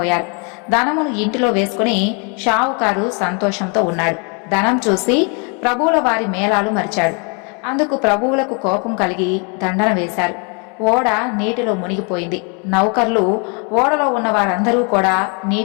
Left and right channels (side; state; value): right; quieter; 35.5 dB